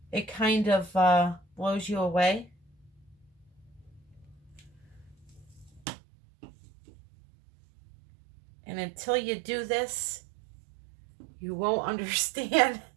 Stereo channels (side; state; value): left; drops out; at 5.8 s